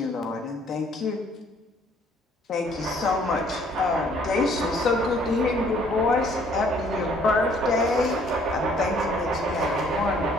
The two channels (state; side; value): normal; both; correlation 0.61